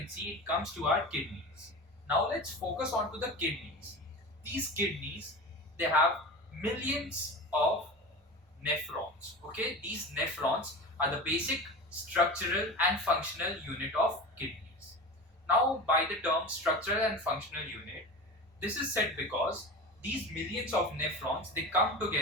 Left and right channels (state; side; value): normal; both; correlation 0.30